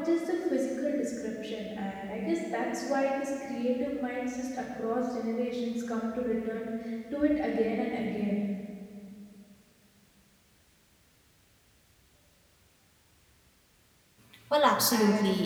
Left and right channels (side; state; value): both; identical; correlation 1.00